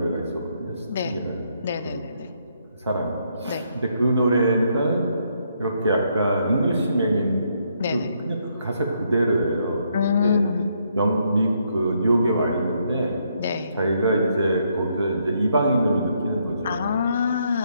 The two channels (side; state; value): both; inverted; correlation -0.74